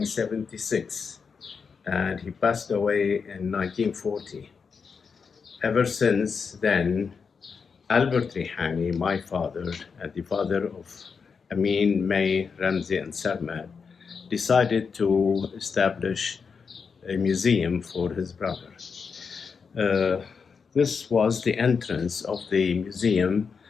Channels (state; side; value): quieter; right; 5.7 dB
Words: and he passed away in 1940. Ever since then, Albert Rihani, my father, and the father of Ameen, May, Ramzi, and Sarmad, decided to establish a museum for his brother. Uh, this was the entrance of the museum